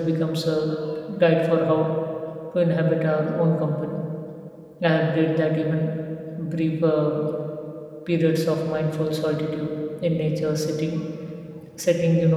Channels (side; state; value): both; identical; correlation 1.00